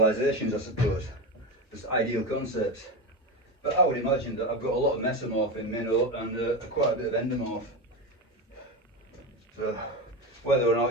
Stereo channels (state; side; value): normal; both; correlation 0.20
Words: I suppose, just ideal concepts. But I would imagine that I've got a lot of mesomorph in me and quite a bit of endomorph. So whether or